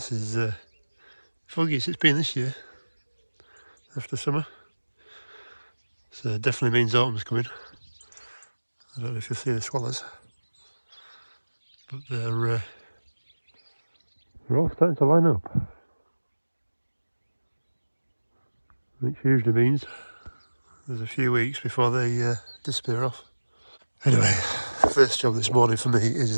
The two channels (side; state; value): both; inverted; correlation -1.00